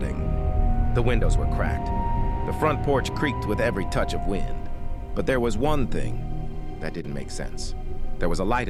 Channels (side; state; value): both; identical; correlation 1.00